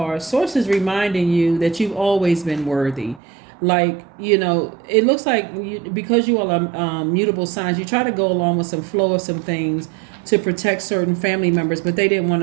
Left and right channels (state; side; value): drops out; left; at 3.2 s